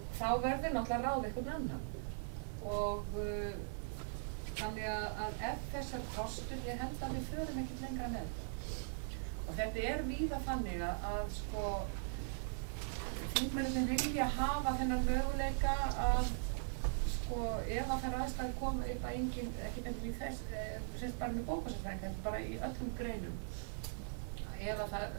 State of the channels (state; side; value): silent; left; digital silence